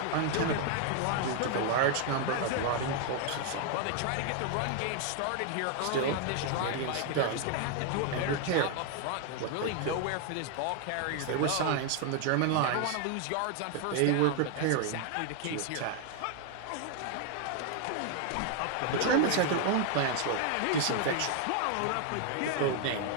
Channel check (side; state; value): both; different; correlation 0.00